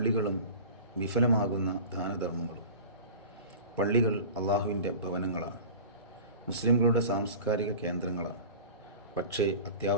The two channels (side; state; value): both; inverted; correlation -0.37